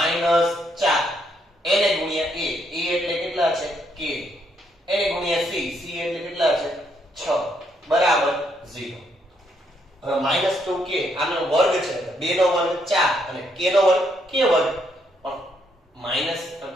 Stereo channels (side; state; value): both; normal; correlation 0.74